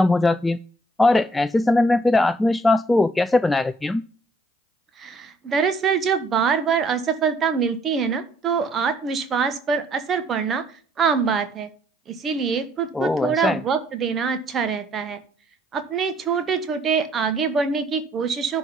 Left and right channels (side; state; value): both; normal; correlation 0.65